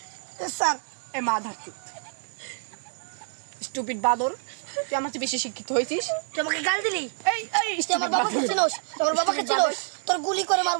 স্যার এ মা ধারতি স্টুপিড বাদর, তুই আমার চেয়ে বেশি শিক্ষিত হয়েছিস। তুই আমাকে গাল দিলি, এই এই তুই আমার বাবাকে চিনোস, তুই আমার বাবাকে চিনোস, তোর গুলি করে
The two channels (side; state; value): left; silent; 60 dB below the other